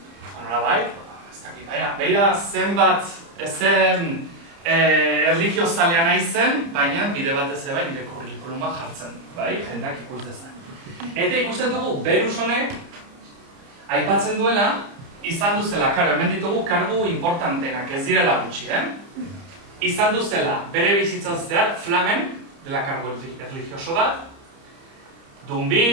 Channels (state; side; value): late; left; 30 ms